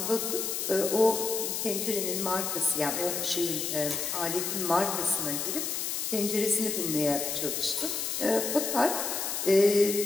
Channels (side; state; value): left; noise; hiss, 2 dB below the sound